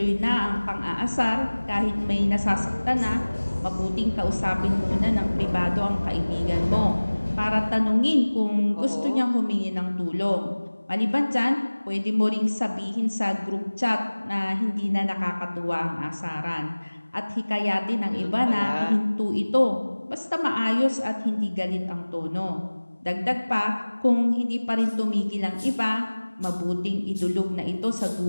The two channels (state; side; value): inverted; both; correlation -1.00